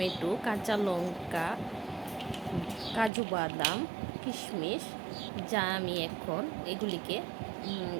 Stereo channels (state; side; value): drops out; left; at 3.1 s